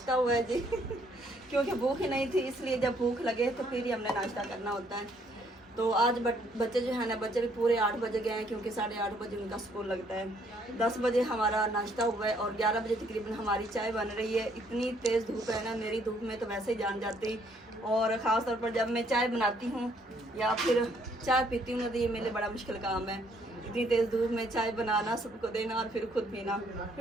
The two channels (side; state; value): both; normal; correlation 0.67